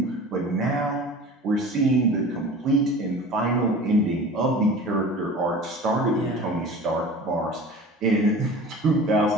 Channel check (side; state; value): both; normal; correlation 0.39